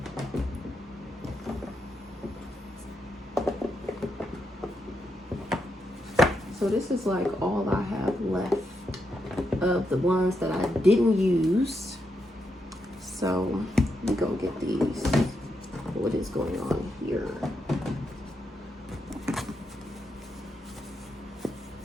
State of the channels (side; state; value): both; normal; correlation 0.82